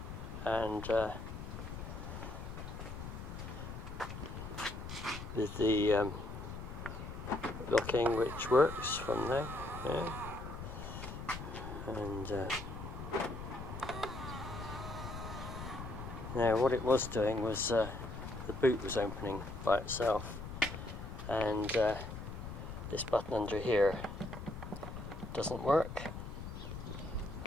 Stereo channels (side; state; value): left; noise; rumble, 8 dB below the sound